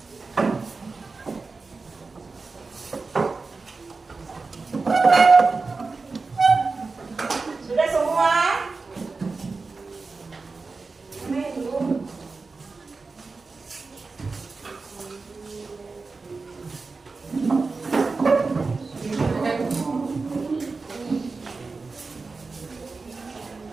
Sudah semua? Main dulu.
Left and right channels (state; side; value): quieter; left; 4.1 dB